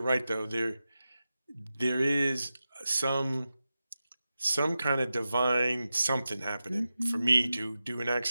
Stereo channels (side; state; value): both; inverted; correlation -0.92